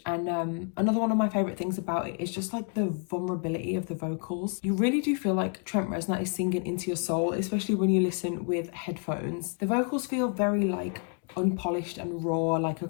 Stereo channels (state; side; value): quieter; right; 39.5 dB